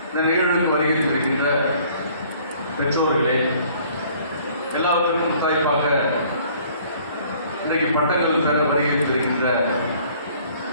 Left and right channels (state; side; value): inverted; both; correlation -0.56